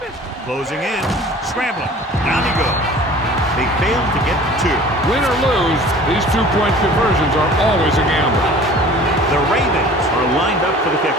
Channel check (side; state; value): both; normal; correlation 0.45